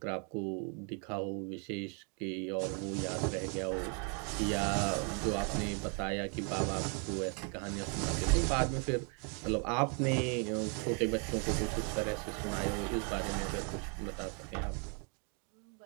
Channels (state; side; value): quieter; left; 38.1 dB